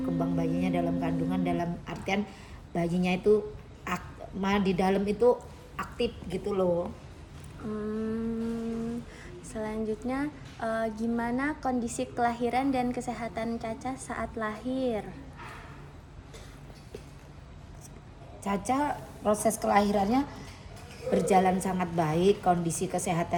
kembang bayinya dalam kandungan dalam artian bayinya itu di dalam itu aktif gitu loh. Selanjutnya, gimana kondisi kelahiran dan kesehatan Caca saat lahir? Caca proses kelahirannya berjalan sangat baik, kondisi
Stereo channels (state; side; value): identical; both; correlation 1.00